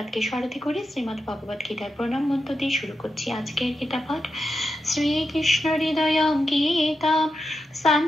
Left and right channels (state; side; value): normal; both; correlation 0.88